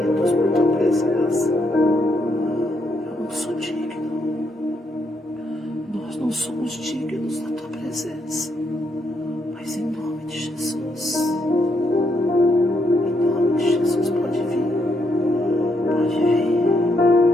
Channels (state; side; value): normal; both; correlation 0.76